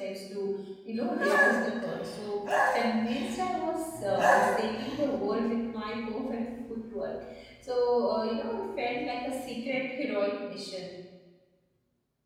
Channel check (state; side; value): identical; both; correlation 1.00